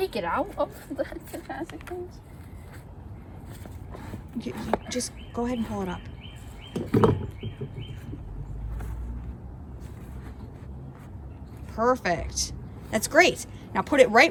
it out of the plastic things? You just go ahead and pull it up. Perfect. That's great. Now put it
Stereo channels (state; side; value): identical; both; correlation 1.00